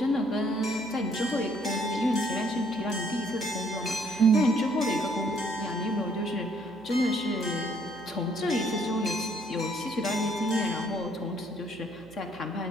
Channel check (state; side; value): noise; right; hum, 24 dB below the sound